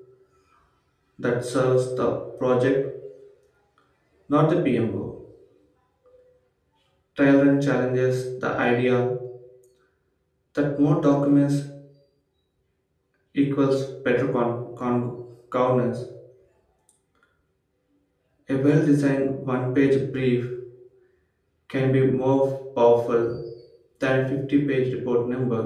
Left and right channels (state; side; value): identical; both; correlation 1.00